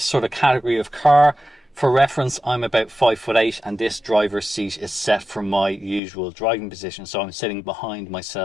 sort of category of car. For reference, I'm about 5'8", and this driver's seat is set for my usual driving position. So I'm sitting behind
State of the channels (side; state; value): right; drops out; at 6.0 s